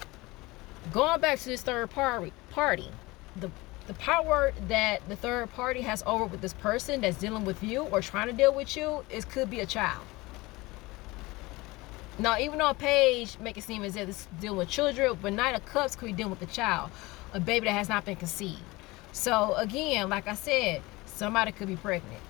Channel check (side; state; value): right; quieter; 21.8 dB